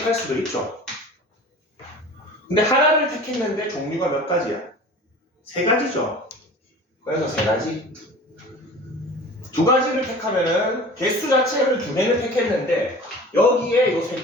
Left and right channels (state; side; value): normal; both; correlation 0.41